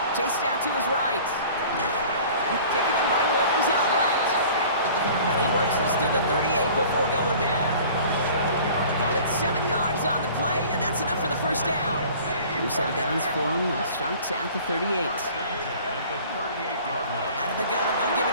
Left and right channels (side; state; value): both; inverted; correlation -0.46